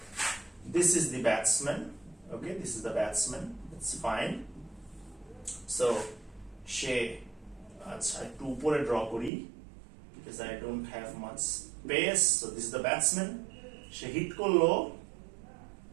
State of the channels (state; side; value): drops out; left; at 9.3 s